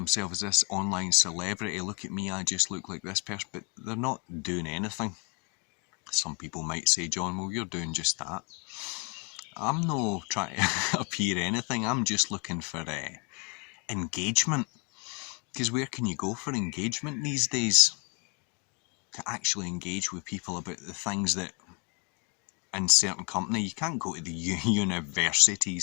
as this online celebrity. Look at me, I just look like this person. But they're not doing anything. Some people might say, John, well, you're doing just that. I'm not trying to appear anything. I'm just looking for engagement. Because where can you go for engagement these days? To actually engage with people about the things that in certain company, you can't go to the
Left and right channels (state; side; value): quieter; right; 33.0 dB